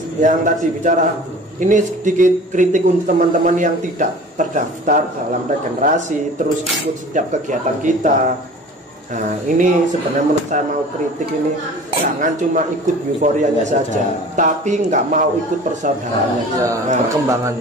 yang tadi bicara ini sedikit kritik untuk teman-teman yang tidak terdaftar dalam regenerasi terus ikut setiap kegiatan kita. Nah, ini sebenarnya menurut saya mau kritik ini jangan cuma ikut euforianya saja, tapi nggak mau ikut persaudaraannya.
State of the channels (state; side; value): normal; both; correlation 0.42